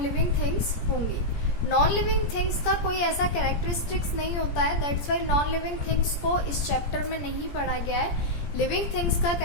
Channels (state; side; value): late; right; 17 ms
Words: लिविंग थिंग्स होंगी. नॉन लिविंग थिंग्स का कोई ऐसा कैरेक्टरिस्टिक्स नहीं होता है, that's why non living things को इस चैप्टर में नहीं पढ़ा गया है. लिविंग थिंग्स का